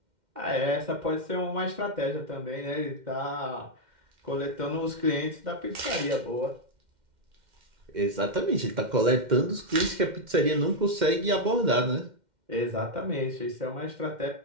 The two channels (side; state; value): left; late; 2.1 ms